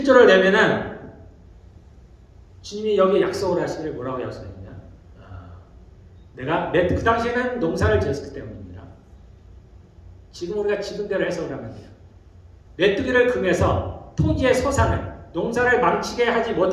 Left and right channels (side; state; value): both; identical; correlation 1.00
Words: 내면은 주님이 여기 약속을 하시기를 뭐라고 약속했냐? 내가 그 당시에는 농사를 지었기 때문입니다. 지금 우리가 지금대로 해석을 하면 돼요. 메뚜기를 금해서 토지의 소산을 농사를 망치게 하지